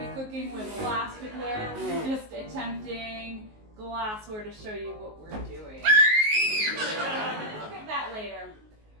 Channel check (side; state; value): left; late; 19 ms